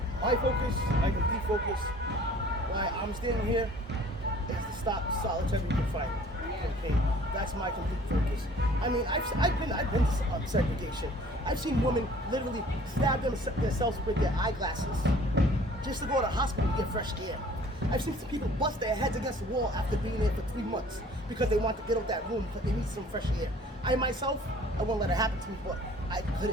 My focus, my complete focus, why I'm standing here, is to stop solitary confinement. Okay, that's my complete focus. I mean, I've been to segregation. I've seen women literally stab themselves with their eyeglasses just to go to the hospital to get fresh air. I've seen some people bust their heads against the wall after being there for 3 months because they want to get out that room because they need some fresh air. I myself, I won't let it happen to me, but I could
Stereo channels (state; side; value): normal; both; correlation 0.52